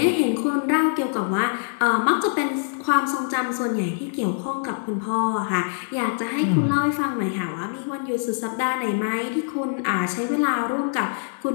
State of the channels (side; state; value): right; silent; 63 dB below the other